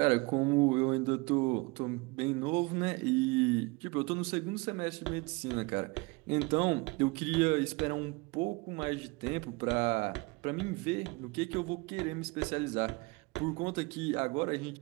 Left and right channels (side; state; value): left; quieter; 25.9 dB